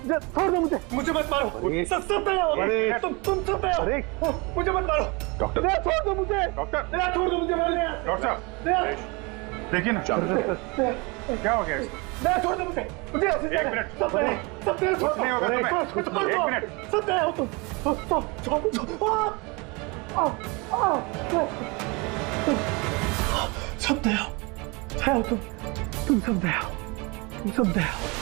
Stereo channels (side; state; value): left; quieter; 27.9 dB